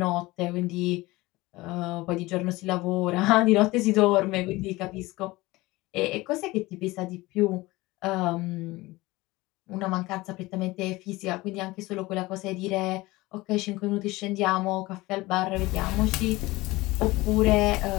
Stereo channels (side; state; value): right; quieter; 20.3 dB